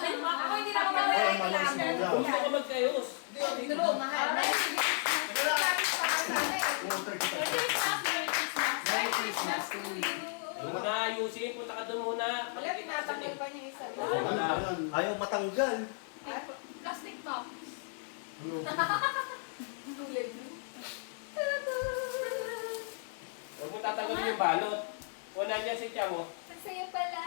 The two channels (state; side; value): silent; right; 55 dB below the other